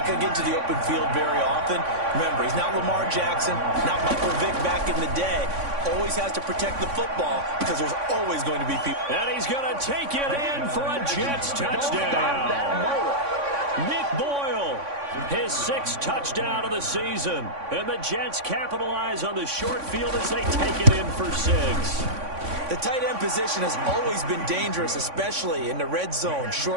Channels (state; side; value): late; left; 3.5 ms